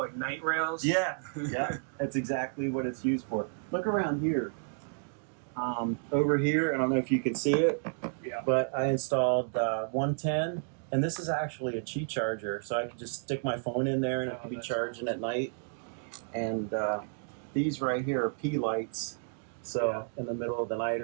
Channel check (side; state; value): left; silent; digital silence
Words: night rails. Yeah, that's exactly what it's used for. Look around here. Over here, I don't know if you can see it, but I installed 110, and this is actually a Qi charger, so I can just stick my phone in there and it can be charging at night. And these right here are P lights, so in the middle of the night